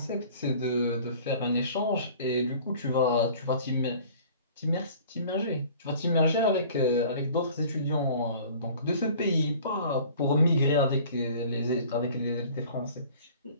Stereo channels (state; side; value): inverted; both; correlation -0.48